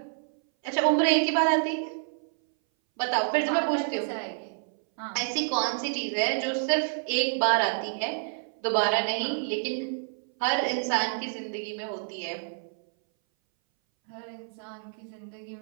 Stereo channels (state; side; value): silent; left; 59 dB below the other